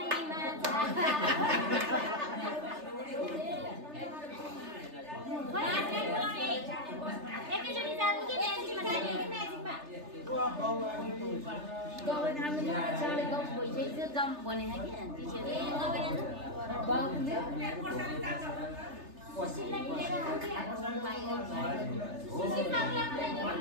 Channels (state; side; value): late; left; 3.3 ms